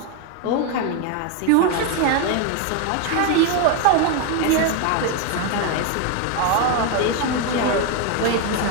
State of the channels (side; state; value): both; different; correlation 0.01